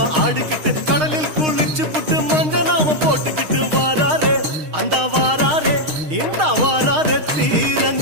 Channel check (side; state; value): left; late; 6.5 ms